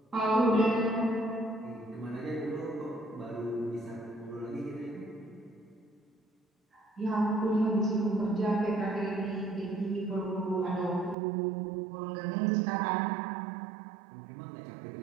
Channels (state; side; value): drops out; left; at 11.2 s